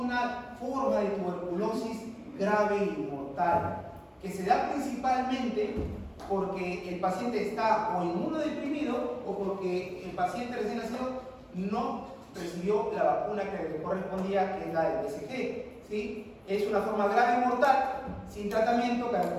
forma de tuberculosis grave y mortal que se da principalmente porque el paciente está o inmunodeprimido o porque el paciente recién nacido no recibió la vacuna que le correspondía, que es la del BCG, ¿sí? Es una forma grave y mortal, sin tratamiento,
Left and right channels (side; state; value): both; identical; correlation 1.00